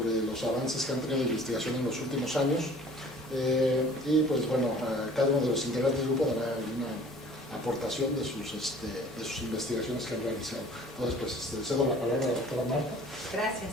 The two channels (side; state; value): both; normal; correlation 0.49